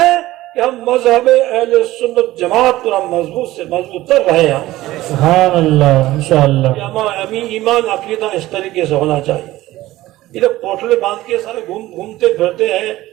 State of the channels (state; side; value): quieter; left; 16.6 dB